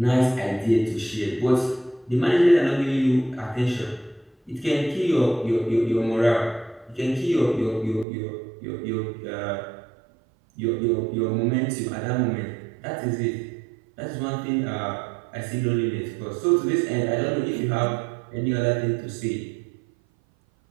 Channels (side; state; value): left; drops out; at 8.1 s